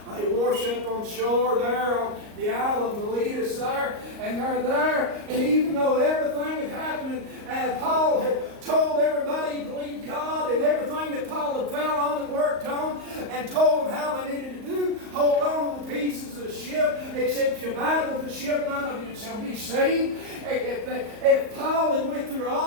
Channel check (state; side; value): late; left; 38 ms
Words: they wash up on shore there on the island of Miletus there, and they're there. And even though everything had happened, and Paul had told everybody he believed God, and everything that Paul had fell on and worked on, and told them how they needed to do, hold on to the pieces of the ship, except you abide with the ship, none of you shall be saved. If Paul had went through